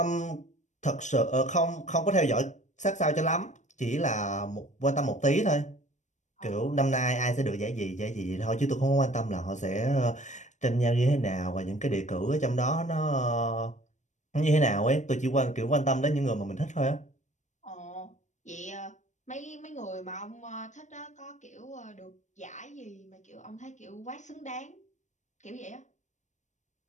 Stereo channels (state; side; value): late; right; 0.35 ms